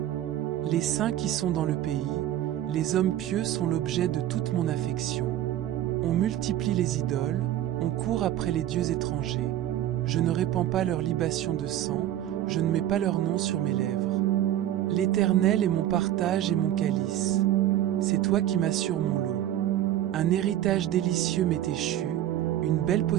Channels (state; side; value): quieter; left; 12.4 dB